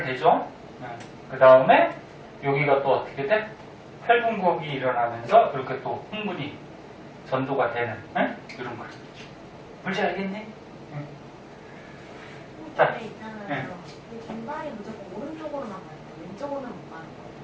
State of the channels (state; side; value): identical; both; correlation 1.00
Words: 되죠. 그 다음에 여기가 또 어떻게 돼? 탈분극이 일어나면서 이렇게 또 흥분이 전도가 되는 이런 거. 물질 알겠니? 자, 있잖아요. 네. 이 빈발이 무조건